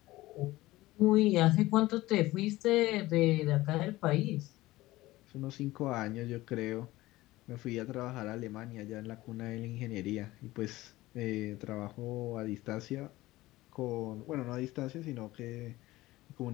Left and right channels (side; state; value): right; quieter; 18.0 dB